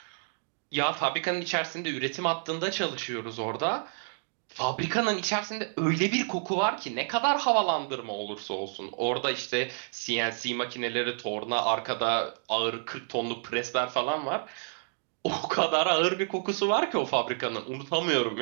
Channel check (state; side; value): silent; left; digital silence